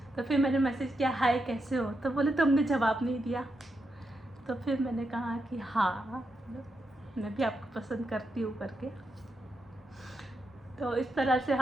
तो फिर मैंने मैसेज किया हाय कैसे हो, तो बोले तुमने जवाब नहीं दिया। तो फिर मैंने कहा कि हाँ मैं भी आपको पसंद करती हूँ करके। तो इस तरह से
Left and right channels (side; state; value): both; normal; correlation 0.84